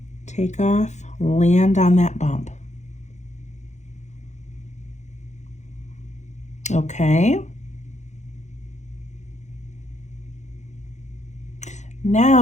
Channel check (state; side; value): late; right; 0.34 ms